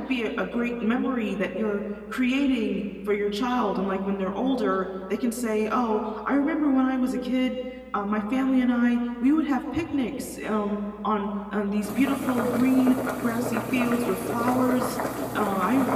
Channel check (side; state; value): both; identical; correlation 1.00